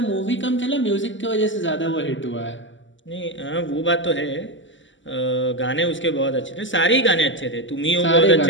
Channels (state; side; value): late; right; 0.55 ms